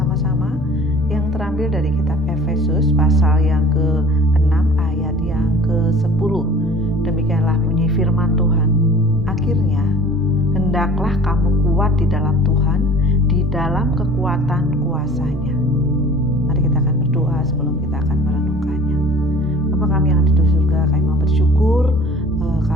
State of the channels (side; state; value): both; normal; correlation 0.45